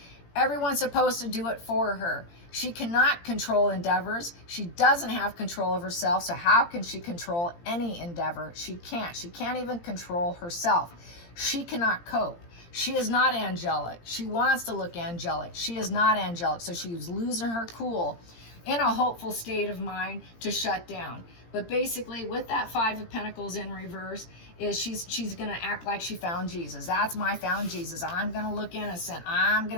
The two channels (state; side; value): late; right; 17 ms